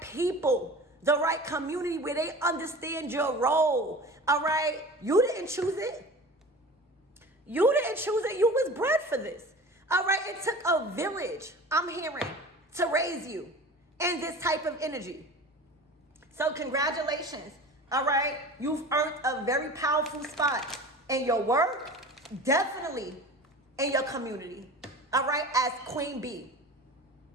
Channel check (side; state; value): both; normal; correlation 0.37